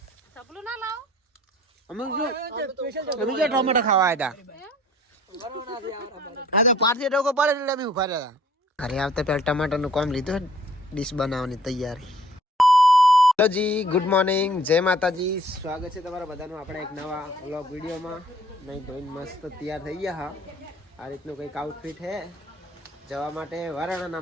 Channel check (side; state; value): both; normal; correlation 0.56